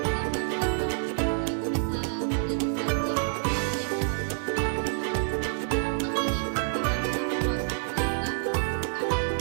sama dengan noun, yaitu bisa menjadi subjek, objek, maupun complement. Noun clause ini merupakan subclause sehingga membutuhkan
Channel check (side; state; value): left; silent; 60 dB below the other